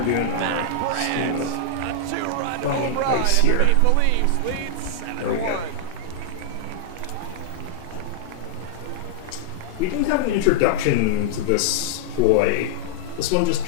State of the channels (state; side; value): different; both; correlation -0.01